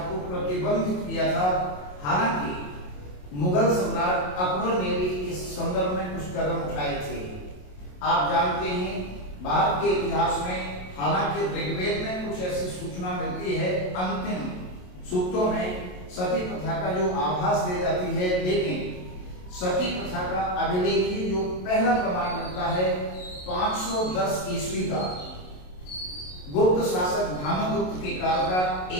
को प्रतिबंधित किया था। हालांकि मुगल सम्राट अकबर ने भी इस संदर्भ में कुछ कदम उठाए थे। आप जानते हैं भारत के इतिहास में हालांकि ऋग्वेद में कुछ ऐसी सूचना मिलती है, अंतिम सूक्तों में सती प्रथा का जो आभास दे जाती है, लेकिन सती प्रथा का अभिलेखी जो पहला प्रमाण मिलता है 510 ईस्वी का, गुप्त शासक भानुगुप्त के काल का,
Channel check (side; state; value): right; late; 27 ms